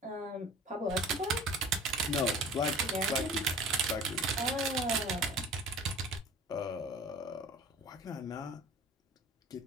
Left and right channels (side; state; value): both; normal; correlation 0.43